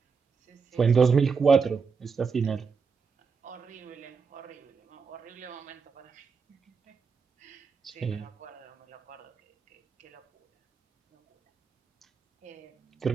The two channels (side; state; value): left; quieter; 5.4 dB